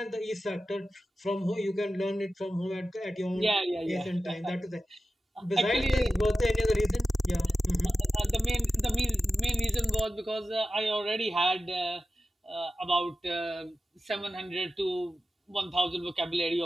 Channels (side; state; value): both; normal; correlation 0.93